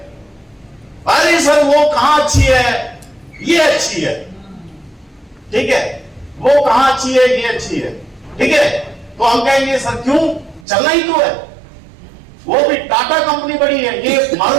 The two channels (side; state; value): left; drops out; at 10.7 s